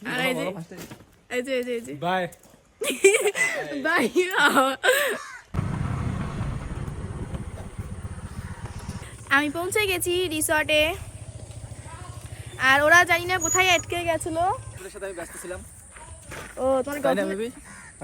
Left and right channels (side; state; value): both; identical; correlation 1.00